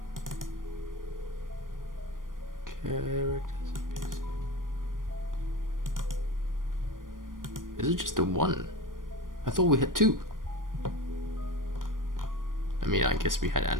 Characters. Is it just the one? I thought we had two. I mean, I guess we had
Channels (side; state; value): left; late; 0.90 ms